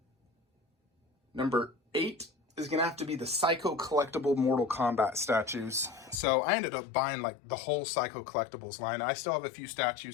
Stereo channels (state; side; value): drops out; right; at 6.2 s